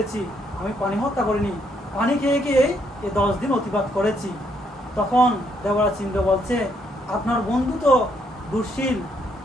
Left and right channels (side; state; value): both; normal; correlation 0.72